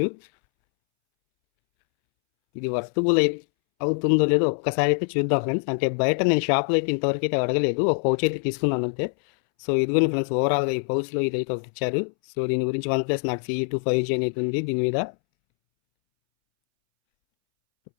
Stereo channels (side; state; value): right; silent; 63 dB below the other